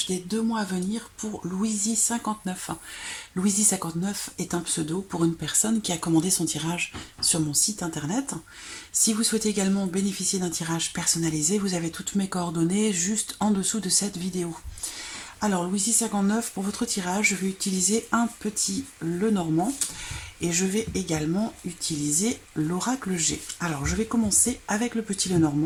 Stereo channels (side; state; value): both; identical; correlation 1.00